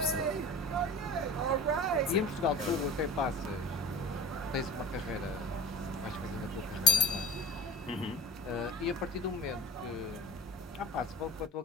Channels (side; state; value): both; normal; correlation 0.33